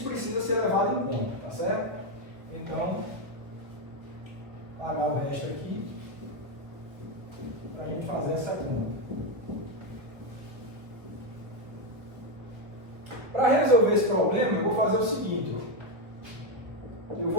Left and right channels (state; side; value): late; left; 1.0 ms